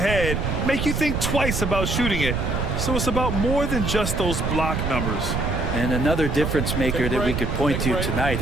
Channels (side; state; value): right; noise; rumble, 1 dB below the sound